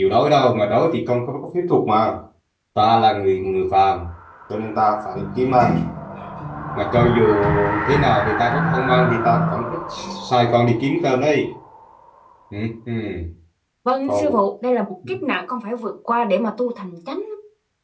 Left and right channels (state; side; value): identical; both; correlation 1.00